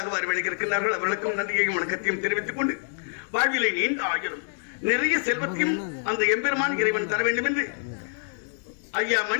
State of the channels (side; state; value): right; silent; digital silence